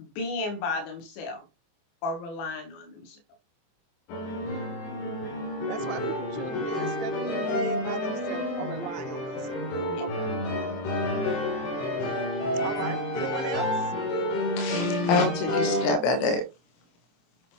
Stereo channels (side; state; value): right; late; 24 ms